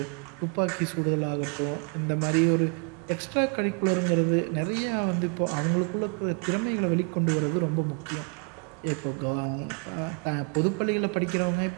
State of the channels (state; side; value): quieter; left; 37.4 dB